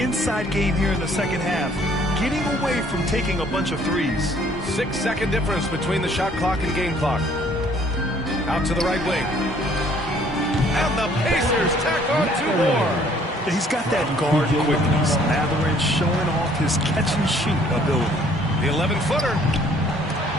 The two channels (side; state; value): both; normal; correlation 0.60